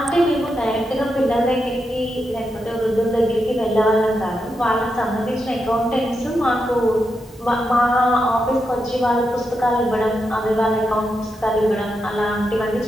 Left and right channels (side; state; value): both; normal; correlation 0.85